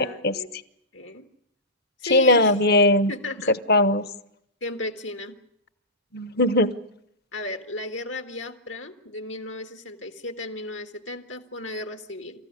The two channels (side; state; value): both; normal; correlation -0.19